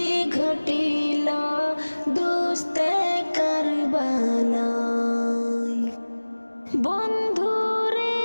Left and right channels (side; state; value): both; inverted; correlation -1.00